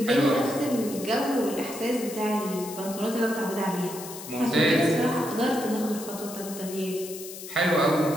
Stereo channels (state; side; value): noise; left; hiss, 12 dB below the sound